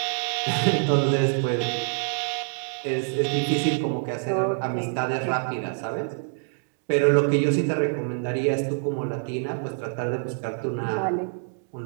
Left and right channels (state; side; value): silent; left; digital silence